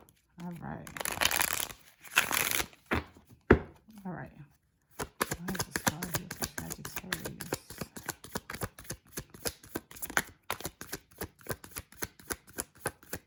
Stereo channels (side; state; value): both; identical; correlation 1.00